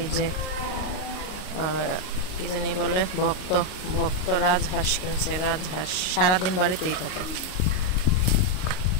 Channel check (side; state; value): right; late; 38 ms